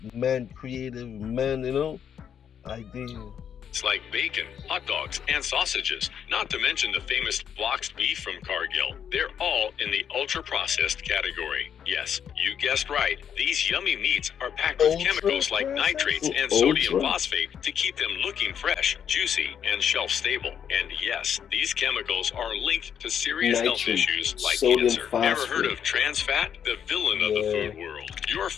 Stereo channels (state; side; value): quieter; right; 8.4 dB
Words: man-creative, idea. It's like bacon, hot dogs, and sausages, not to mention the famous boxed beef from Cargill. They're all in the ultra-processed category. Yes, you guessed right. These yummy meats are packed with chemicals like nitrates and sodium phosphate to keep them looking fresh, juicy, and shelf-stable. And yes, these chemicals are linked to serious health issues like cancer. Ever heard of trans fat? The villain of the food world. Your